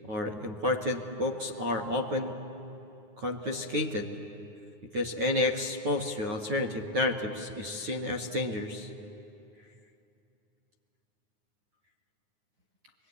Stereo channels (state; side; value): late; left; 9.6 ms